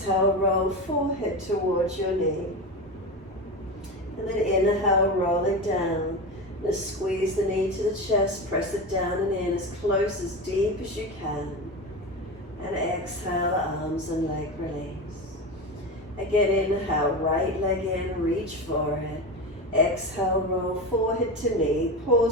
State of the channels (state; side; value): normal; both; correlation 0.22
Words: roll forehead towards your knee. And then inhale, roll it down. Now squeeze the knee to the chest, press it down and in as close, as deep as you can. And exhale, arms and leg release. Again, inhale, right leg in, reach for it. Exhale, roll forehead to knee.